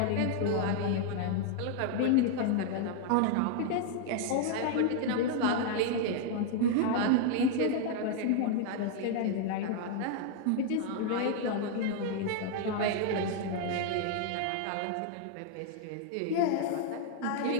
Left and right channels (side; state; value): both; different; correlation 0.00